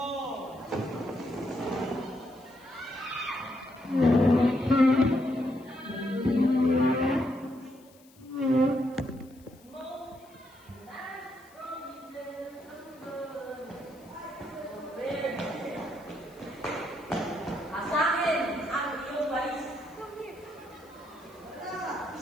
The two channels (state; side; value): noise; left; hiss, 27 dB below the sound